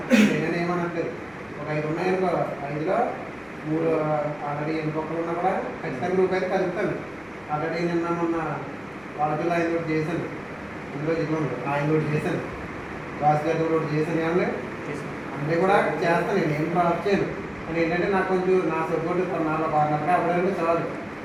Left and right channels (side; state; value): left; noise; rumble, 29 dB below the sound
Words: నేనేమనట్లేదు. ఒక 5 ఉన్నాయనుకో 5లో 3 ఆల్రెడీ ఎన్నికొక్కలు ఉన్నా కూడా ఖచ్చితంగా గ్రూప్ అయితే కలుపుతాను. ఆల్రెడీ నిన్న మొన్న వాళ్ళతో 5 కూడా చేశాను. ఇందులో జిల్లా ఉంది ఆయన లోడ్ చేశాను రాజు గారి లోడ్ చేశాను ఏమన్నా అంటే కూడా చేస్తాను నేను ఏం డ్రాప్ చేయను కానీ ఏంటంటే నాకు కొంచెం నా సపోర్ట్ 4 అవ్వడానికి చాలు